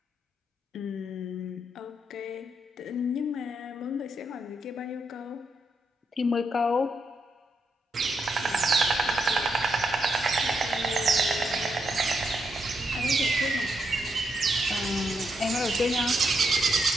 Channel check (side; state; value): both; normal; correlation 0.81